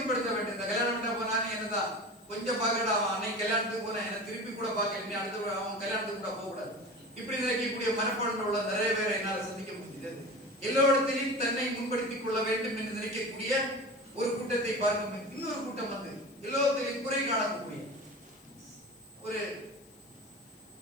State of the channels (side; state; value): left; noise; hiss, 27 dB below the sound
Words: வேண்டும். இந்த கல்யாணம் பண்ண போனானே என்னதான் கொஞ்சம் பார்க்கடா, அவன் அன்னைக்கு கல்யாணத்துக்கு போனேன் என்ன திருப்பி கூட பார்க்க, அடுத்து அவன் கல்யாணத்துக்கு கூட போகக்கூடாது. இப்படி நினைக்கக்கூடிய மனப்பான்மை உள்ள நிறைய பேரை என்னால் சந்திக்க முடிகிறது. எல்லோரிடத்திலையும் தன்னை முன்படுத்திக் கொள்ள வேண்டும் என்று நினைக்கக்கூடிய ஒரு கூட்டத்தை பார்க்கும். இன்னொரு கூட்டம் வந்து எல்லோருத்திலையும் குறை காணக்கூடிய ஒரு